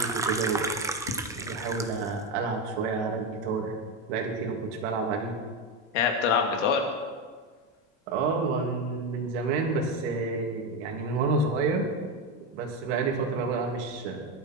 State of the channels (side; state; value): both; normal; correlation 0.12